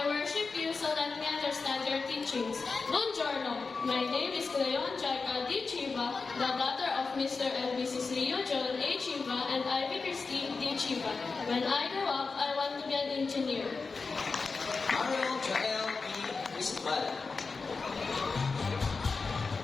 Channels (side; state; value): right; quieter; 4.4 dB